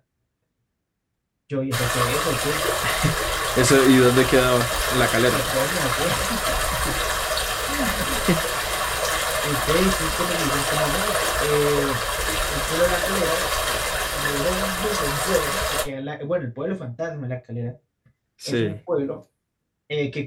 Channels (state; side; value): identical; both; correlation 1.00